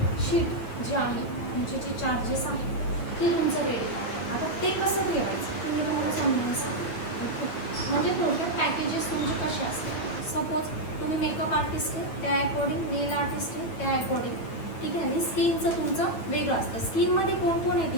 शीट जे आहे, म्हणजे जे चार्जेस आहेत ते तुमचं रेडी पाहिजे. आता ते कसं ठेवायचं तुम्ही तुम्हाला समजून सांगा. म्हणजे थोडक्यात पॅकेजेस तुमचे कसे असतील. सपोज तुम्ही मेकअप आर्टिस्ट आहे त्या अकॉर्डिंग, नेल आर्टिस्ट आहे त्या अकॉर्डिंग, ठीक आहे. आणि स्किनचं तुमचं वेगळं असतं. स्किनमध्ये कोण कोण आहे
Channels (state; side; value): late; right; 9.1 ms